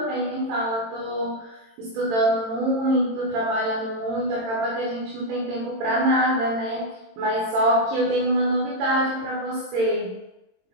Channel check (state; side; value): late; left; 22 ms